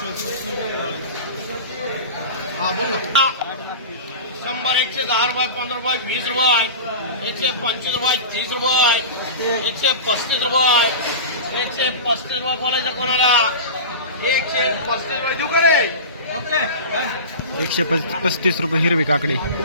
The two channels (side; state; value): both; inverted; correlation -0.30